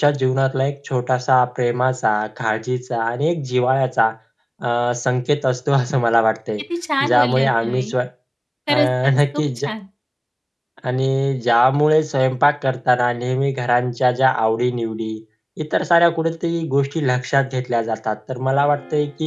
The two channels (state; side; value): identical; both; correlation 1.00